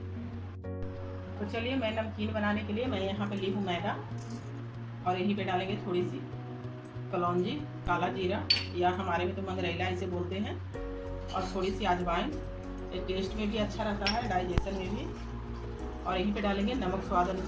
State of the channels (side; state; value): both; identical; correlation 1.00